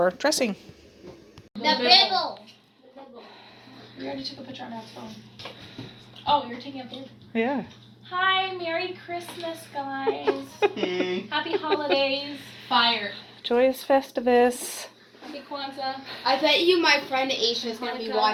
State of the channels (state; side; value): identical; both; correlation 1.00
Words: dressing. The bibble. We already took a picture on our phone. Oh, you're taking a picture? Yeah. Hi, Merry Christmas, guys. Happy holidays. Fire. Joyous Festivus. Happy Kwanzaa. I bet you my friend Aisha is going to be